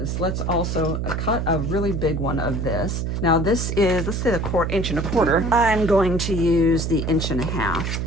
let's also cut a really big one of this. Now this is, let's say, the 1 1/4 inch. I'm going to use the 1 1/2 inch.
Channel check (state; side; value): noise; right; hum, 1 dB below the sound